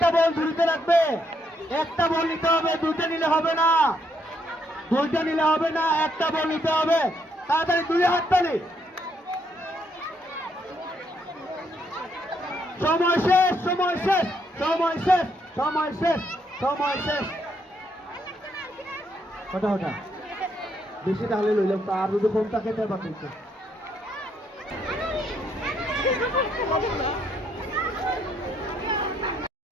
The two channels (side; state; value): both; normal; correlation 0.74